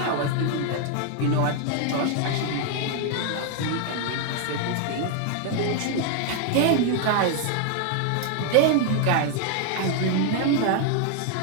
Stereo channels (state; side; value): different; both; correlation 0.00